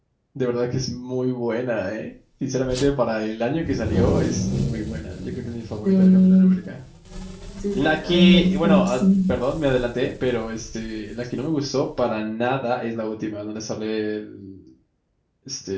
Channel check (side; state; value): both; identical; correlation 1.00